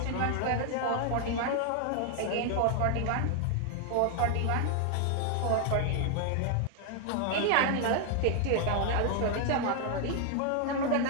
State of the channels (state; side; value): different; both; correlation 0.00